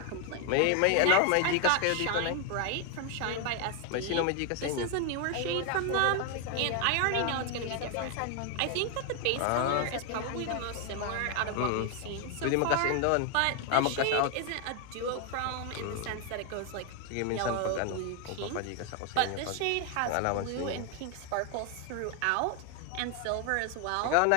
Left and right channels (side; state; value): both; different; correlation 0.01